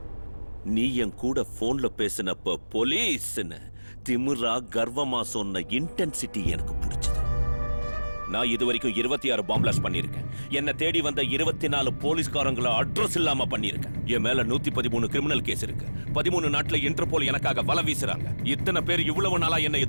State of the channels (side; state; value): both; inverted; correlation -1.00